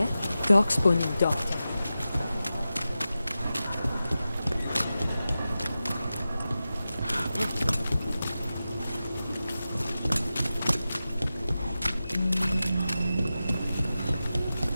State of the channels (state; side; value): inverted; both; correlation -0.93